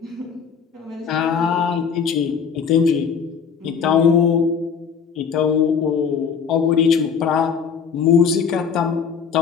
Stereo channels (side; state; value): right; quieter; 6.6 dB